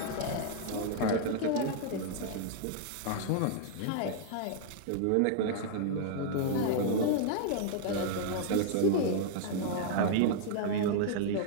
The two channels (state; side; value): different; both; correlation -0.01